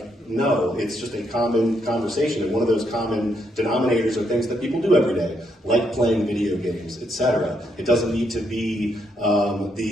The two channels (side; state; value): both; normal; correlation 0.76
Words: no, it's just a common conversation, and one of those common denominators are things that people do every day, like playing video games, etc. It doesn't need to be